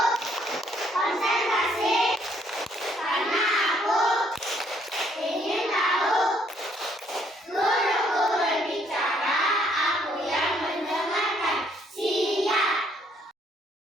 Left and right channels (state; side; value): normal; both; correlation 0.67